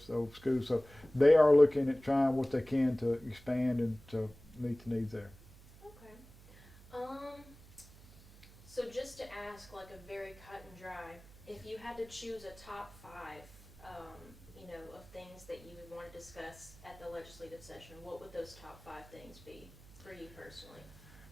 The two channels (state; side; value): noise; right; hum, 21 dB below the sound